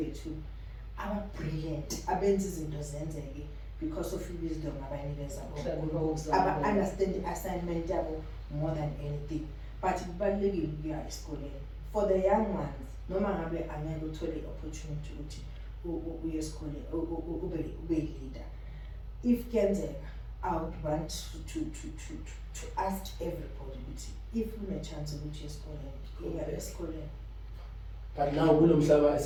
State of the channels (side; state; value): both; identical; correlation 1.00